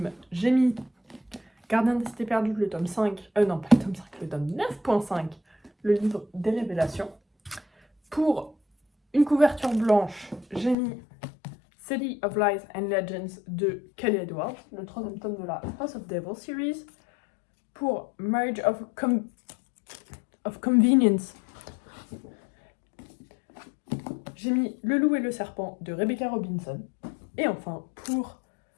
j'ai mis Gardien des Cités Perdues, le tome 5, non pas le tome 5, le tome 9.5, le livre des révélations. Pour une couverture blanche, j'ai mis City of Lies and Legends de Kelly Edwards, le troisième tome de la House of Devil series. Pour Marriage of Convenience, j'ai mis Le Loup et le Serpent de Rebecca Robinson. Et enfin, pour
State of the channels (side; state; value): right; drops out; at 10.8 s